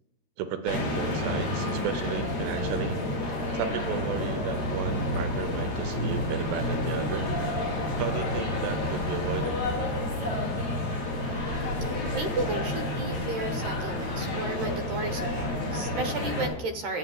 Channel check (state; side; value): late; left; 13 ms